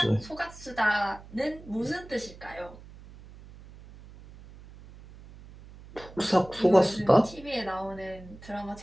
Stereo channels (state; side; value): noise; right; hum, 19 dB below the sound